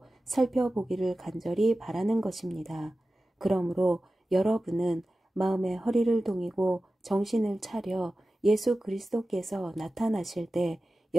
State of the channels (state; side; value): normal; both; correlation 0.95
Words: 살펴보기를 간절히 바라는 것입니다. 그러므로 여러분은 마음의 허리를 동이고 정신을 차려 예수 그리스도께서 나타나실 때